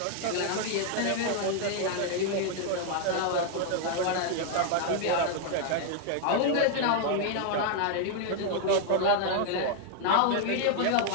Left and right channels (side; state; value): both; different; correlation 0.00